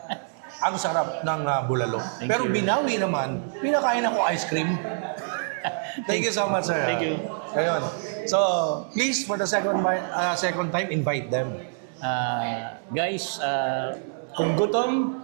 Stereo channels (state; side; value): silent; left; digital silence